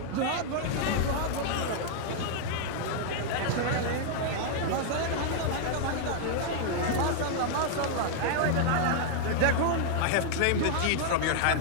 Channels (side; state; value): both; different; correlation 0.00